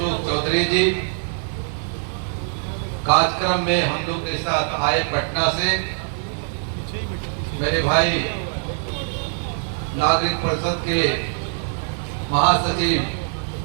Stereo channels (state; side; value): silent; left; 61 dB below the other